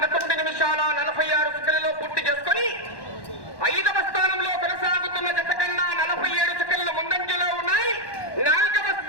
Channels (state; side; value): late; right; 1.1 ms